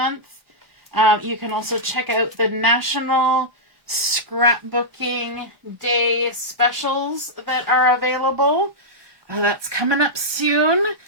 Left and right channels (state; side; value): late; left; 1.0 ms